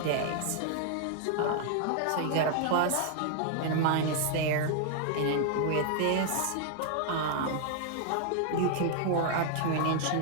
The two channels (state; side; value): different; both; correlation 0.00